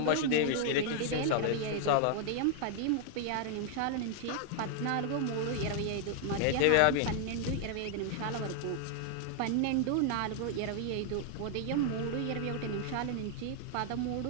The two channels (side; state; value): both; different; correlation 0.00